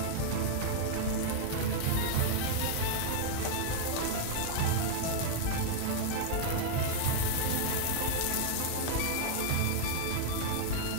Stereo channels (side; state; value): both; different; correlation 0.00